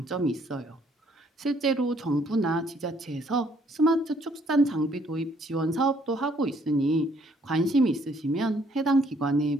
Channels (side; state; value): both; normal; correlation 0.65